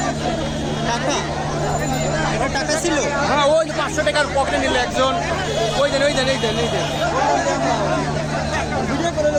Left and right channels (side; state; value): both; identical; correlation 1.00